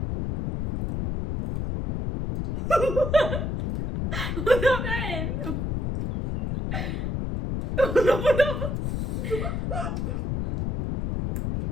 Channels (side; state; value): left; noise; rumble, 2 dB below the sound